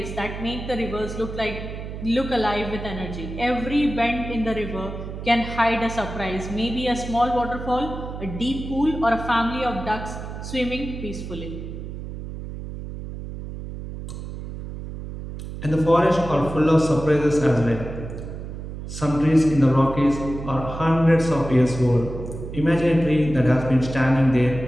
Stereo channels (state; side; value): noise; right; hum, 9 dB below the sound